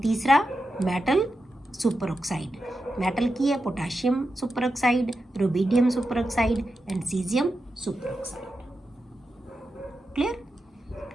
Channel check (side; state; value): both; normal; correlation 0.89